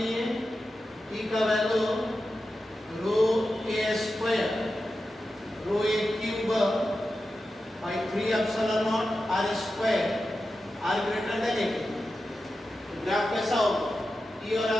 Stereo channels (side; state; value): both; normal; correlation 0.91